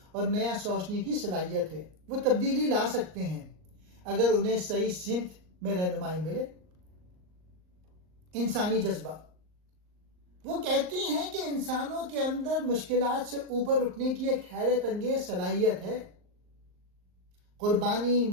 اور نیا سوچنے کی صلاحیت ہے۔ وہ تبدیلی لا سکتے ہیں اگر انہیں صحیح سمت میں رہنمائی ملے۔ انسانی جذبہ، وہ کہتی ہیں کہ انسانوں کے اندر مشکلات سے اوپر اٹھنے کی ایک حیرت انگیز صلاحیت ہے۔ قربانی،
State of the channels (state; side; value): late; left; 38 ms